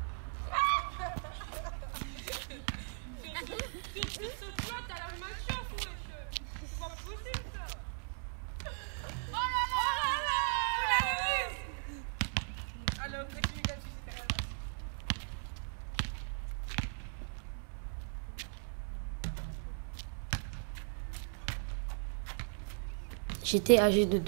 J'étais âgée de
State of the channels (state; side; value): silent; left; digital silence